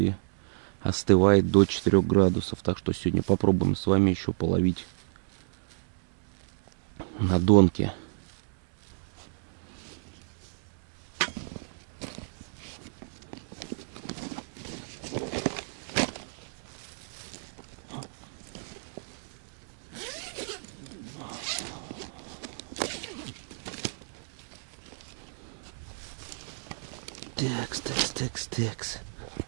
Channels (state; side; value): silent; left; digital silence